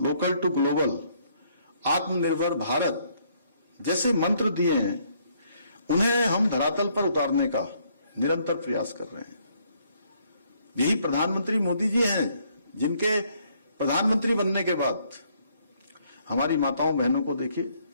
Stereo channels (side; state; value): both; inverted; correlation -0.68